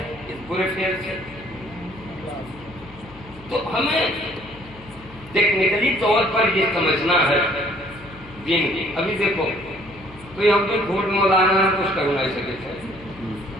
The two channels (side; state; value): left; noise; hum, 20 dB below the sound